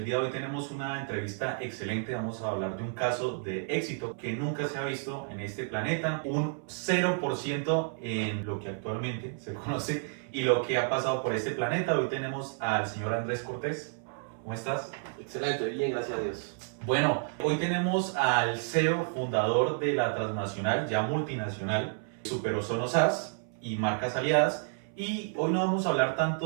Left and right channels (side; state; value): left; silent; 57 dB below the other